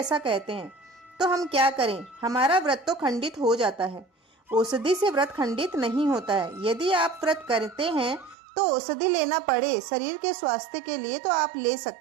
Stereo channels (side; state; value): left; drops out; at 8.3 s